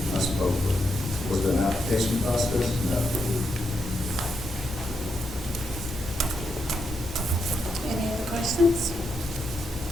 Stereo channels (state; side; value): normal; both; correlation 0.82